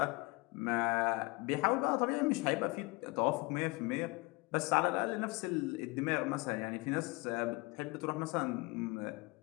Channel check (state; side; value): quieter; right; 25.5 dB